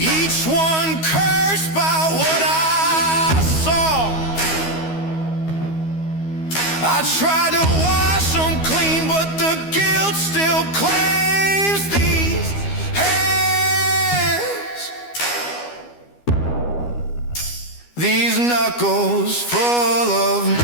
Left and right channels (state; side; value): late; right; 12 ms